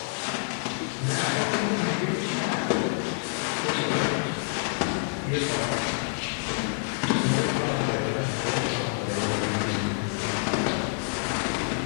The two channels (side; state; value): right; silent; 60 dB below the other